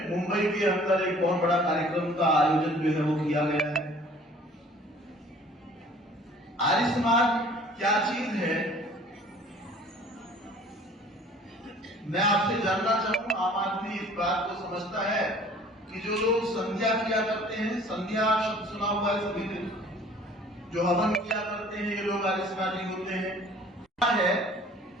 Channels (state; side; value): normal; both; correlation 0.51